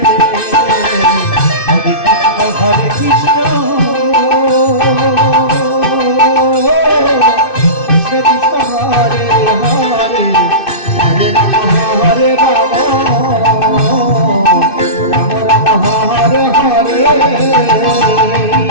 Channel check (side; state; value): right; late; 2.6 ms